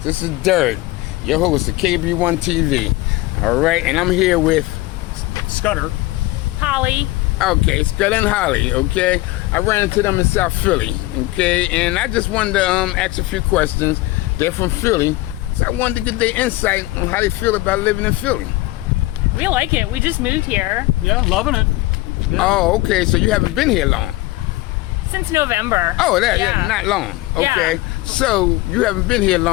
is Dirt, your host of KB1 TV. All right, and I'm here with Scudder. Holly. Okay, Scott and Holly. Okay, I ran into them in South Philly. Okay, and I just wanted to ask a few questions. They're from Philly, so I wanted to get their insight on how they feel about living in Philly. We like it. We just moved here Yeah, loving it. Yeah. Oh, okay, so you haven't been here long. since November. Oh, yeah, Yeah. not long. Okay, Yeah. so you haven't been here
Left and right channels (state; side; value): quieter; right; 19.2 dB